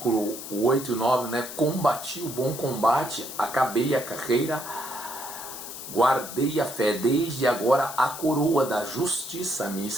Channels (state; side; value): noise; left; hiss, 10 dB below the sound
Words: 8 e 9, né? Combati o bom combate, acabei a carreira, guardei a fé, desde agora a coroa da justiça me